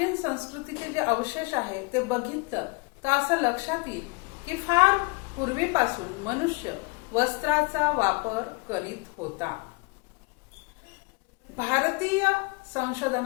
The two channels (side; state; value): right; quieter; 28.5 dB